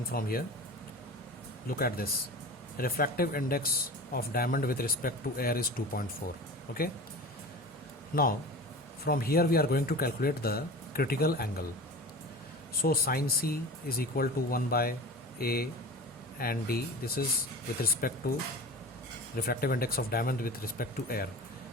from here. Look at this. Refractive index of diamond with respect to air is 2.4. Okay. Now from here we are going to calculate the critical angle. So sin C is equal to 1 by A and D. This is with respect to refractive index of diamond with respect to air.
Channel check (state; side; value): normal; both; correlation 0.35